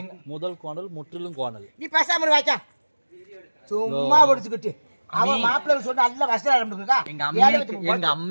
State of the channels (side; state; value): both; inverted; correlation -1.00